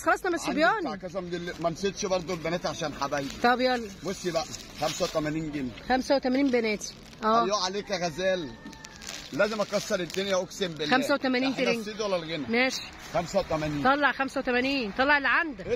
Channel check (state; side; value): identical; both; correlation 1.00